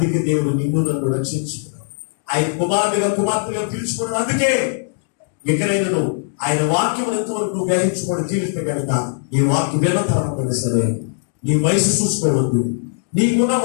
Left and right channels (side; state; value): right; silent; digital silence